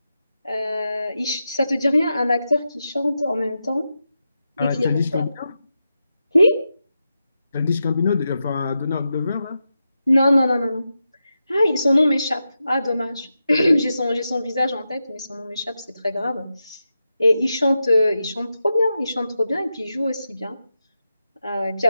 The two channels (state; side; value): inverted; both; correlation -0.89